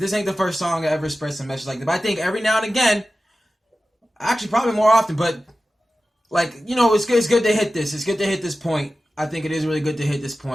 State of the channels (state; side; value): normal; both; correlation 0.94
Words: ain't the first song to ever spread some message like that. But I think every now and again, actually probably more often, but like, you know, it's good to hit this. It's good to hit this point. I think it is really good to hit this